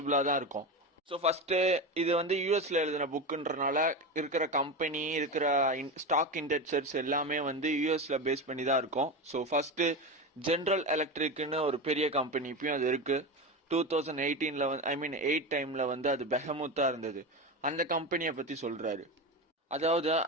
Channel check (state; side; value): normal; both; correlation 0.21